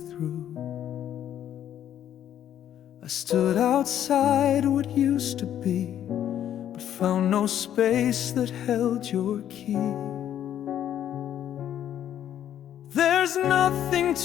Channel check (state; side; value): quieter; right; 10.6 dB